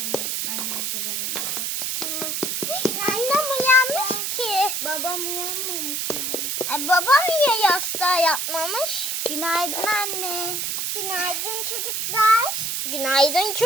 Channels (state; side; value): noise; right; hiss, 1 dB below the sound